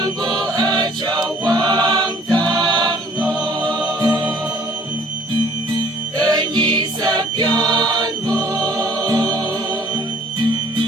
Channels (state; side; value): normal; both; correlation 0.56